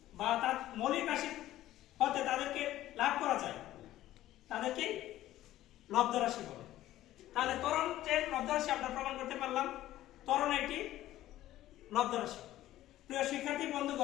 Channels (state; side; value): quieter; right; 14.4 dB